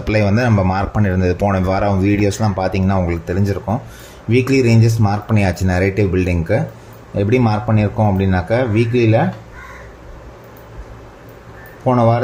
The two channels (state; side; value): identical; both; correlation 1.00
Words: வந்து நம்ம மார்க் பண்ணியிருந்தது போன வாரம் வீடியோஸ்லாம் பார்த்தீங்கன்னா உங்களுக்கு தெரிஞ்சிருக்கும். வீக்லி ரேஞ்சஸ் மார்க் பண்ணியாச்சு. நரேட்டிவ் பில்டிங்க்கு எப்படி மார்க் பண்ணியிருக்கோம் அப்படின்னாக்கா, வீக்லியில் போன